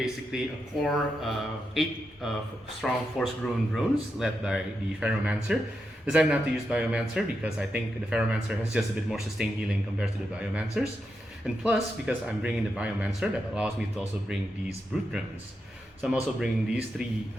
a core 8 strong force-grown drones led by the Pheromancer. Decided not to use Biomancer because I think the Pheromancer has just a bit more sustained healing compared to the Biomancers. And plus, because I'm bringing the Biomancer, that allows me to also bring these Brute Drones. So I'm also bringing these 3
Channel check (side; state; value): both; normal; correlation 0.86